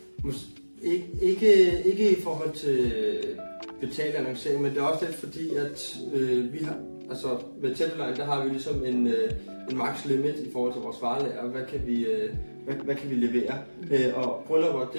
Ikke i forhold til betalt annoncering, men det er også lidt fordi, at vi har, altså ved Tætteline, der har vi ligesom en max limit i forhold til vores varelager, hvad kan vi levere. Og bryllupper,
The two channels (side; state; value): both; inverted; correlation -1.00